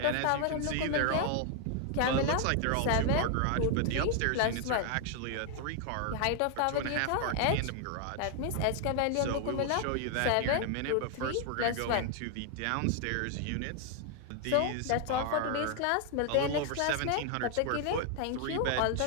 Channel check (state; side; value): different; both; correlation 0.00